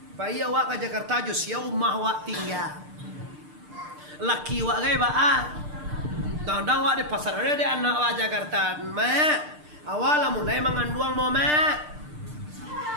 Pak iya wak ke Jakarta jus ya umah wak tinggal. Laki wak gay ba Dang wak di pasar ada di anak wak Jakarta. Awalnya mulai mengandung mau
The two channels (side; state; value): left; late; 6.7 ms